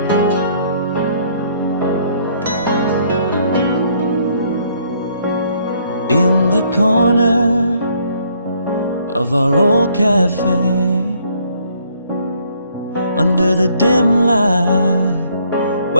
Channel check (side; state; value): both; inverted; correlation -0.66